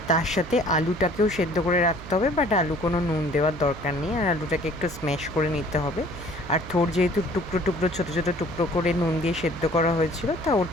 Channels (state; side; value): noise; right; hum, 14 dB below the sound